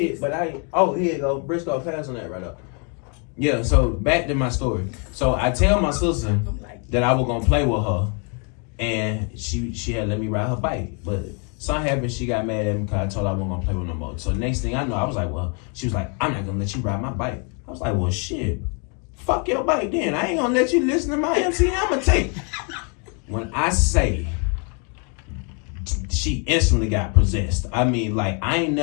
but here you go. Briscoe, pass on that right up. Yeah, so back to my story. So I tell my sister that I was gonna play with her, and she had let me ride her bike. But something happened, she got mad at me because I told her I wasn't gonna play with no more. So next thing I know, I was like, well, she was like, I'm not gonna let you ride my bike. I was like, well, shit, fuck your bike then. I ain't gonna let you listen to my MC Hammer tape. When I say she instantly got possessed. I mean, like, I ain't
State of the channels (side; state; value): right; quieter; 38.0 dB